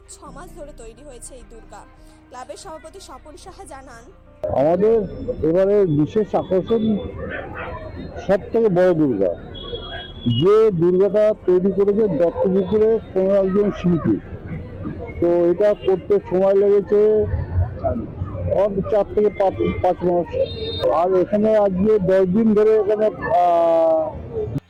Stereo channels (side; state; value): both; identical; correlation 1.00